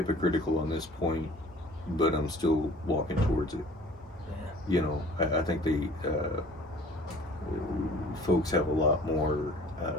on this point, but I'm still walking towards it. You know, I think folks have a lot more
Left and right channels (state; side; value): normal; both; correlation 0.50